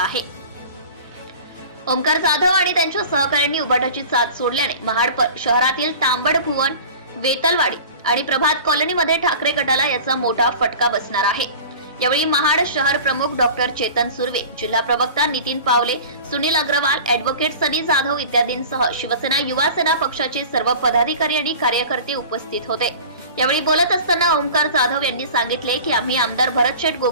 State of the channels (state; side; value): inverted; both; correlation -0.39